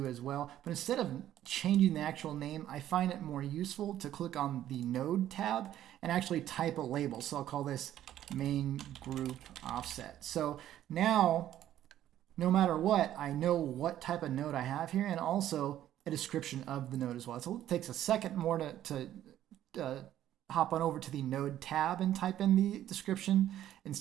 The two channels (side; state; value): left; quieter; 12.1 dB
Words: as well. But instead of changing the actual name, I find it more useful to click on the node tab and actually type a label. So I'll call this main group offset. So now, no matter what, I know what type of node I have here, and also a description of the node as well. So it takes a second more to hop on over to the node tab and type in the description